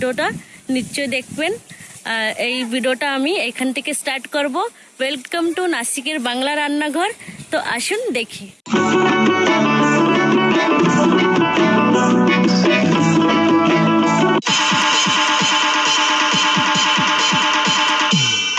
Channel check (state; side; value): identical; both; correlation 1.00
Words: নিশ্চয়ই দেখবেন। এই ভিডিওটা আমি এখান থেকে স্টার্ট করব। ওয়েলকাম টু নাসিকের বাংলা রান্নাঘর। তো আসুন দেখি।